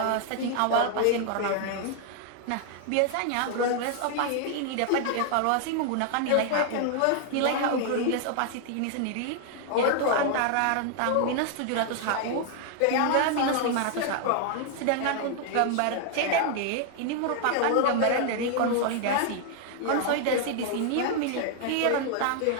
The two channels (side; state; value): both; different; correlation 0.00